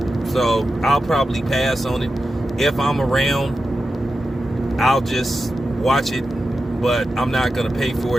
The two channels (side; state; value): both; normal; correlation 0.90